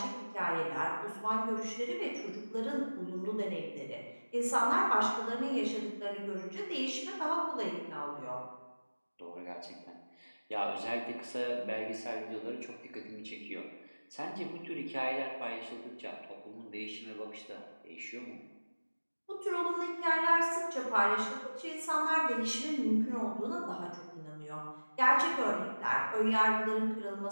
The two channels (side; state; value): both; inverted; correlation -1.00